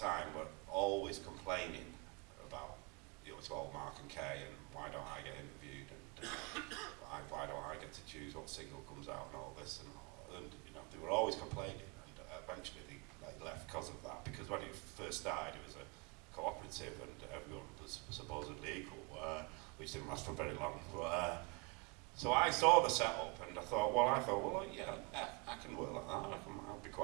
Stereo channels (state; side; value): quieter; left; 29.3 dB